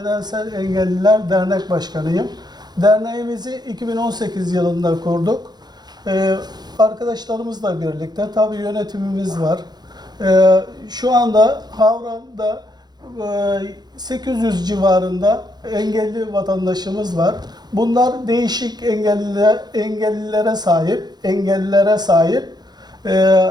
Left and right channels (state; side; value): late; left; 0.20 ms